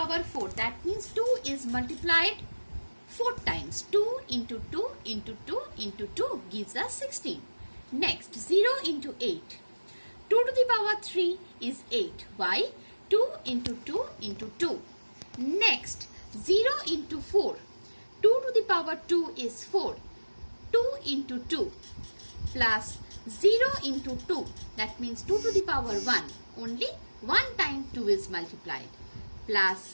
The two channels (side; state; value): both; inverted; correlation -1.00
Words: 4. That means 2 is multiplied 4 times. 2 into 2 into 2 into 2 gives us 16. Next 0 into 8. 2 to the power 3 is 8. Why? 2 into 2 into 2. Next 0 into 4. 2 to the power 2 is 4. 2 into 2 plus 0 into 2. That means 2 to the power 1. Only 1 time 2 is multiplied. Plus